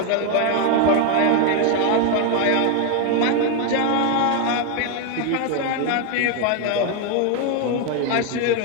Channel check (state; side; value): different; both; correlation 0.01